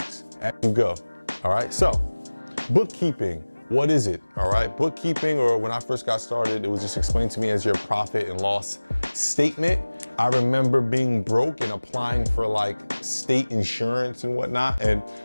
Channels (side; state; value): both; inverted; correlation -1.00